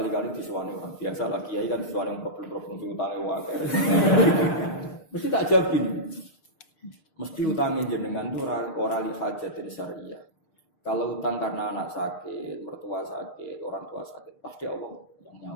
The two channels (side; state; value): right; late; 6.6 ms